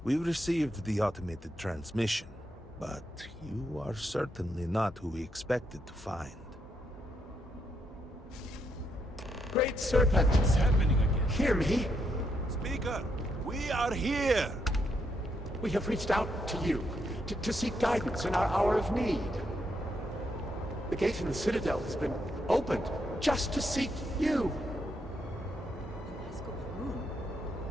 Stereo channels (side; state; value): both; normal; correlation 0.78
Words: We received the automated transmission, but you are certainly not who we expected to find. Great Serpent! What's happening again? Hear me! Speaker, we are here! We have reached out to you to seek guidance in our hour of need. The gate in the Citadel has been opened just to seek you. Vasco Baroon,